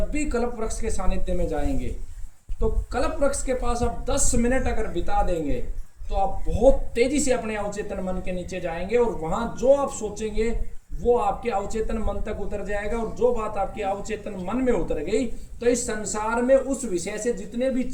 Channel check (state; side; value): identical; both; correlation 1.00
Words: भी कल्प वृक्ष के सानिध्य में जाएंगे तो कल्प वृक्ष के पास आप 10 मिनट अगर बिता देंगे तो आप बहुत तेजी से अपने अवचेतन मन के नीचे जाएंगे, और वहां जो आप सोचेंगे वो आपके अवचेतन मन तक उतर जाएगा। और जो बात आपके अवचेतन मन में उतर गई तो इस संसार में उस विषय से जितने भी